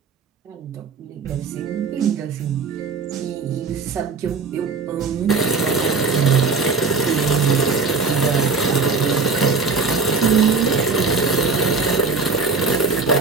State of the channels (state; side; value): quieter; left; 4.6 dB